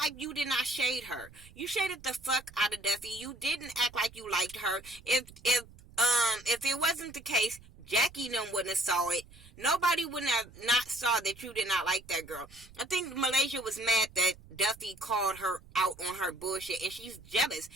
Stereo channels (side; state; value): right; noise; rumble, 22 dB below the sound